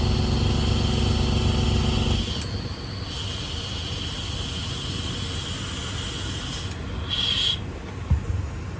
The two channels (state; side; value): identical; both; correlation 1.00